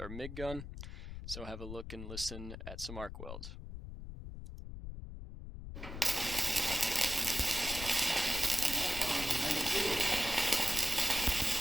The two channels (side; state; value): left; noise; rumble, 9 dB below the sound